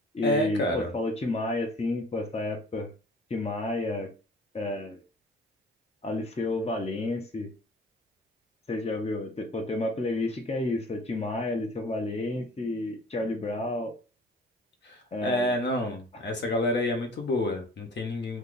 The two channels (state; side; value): normal; both; correlation 0.49